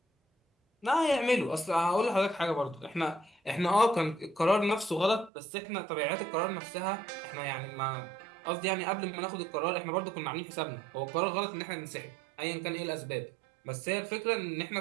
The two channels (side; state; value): left; drops out; at 5.3 s